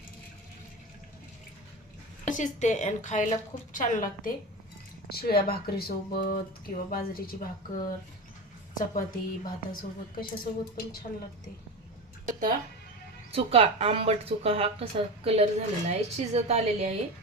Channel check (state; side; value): normal; both; correlation 0.25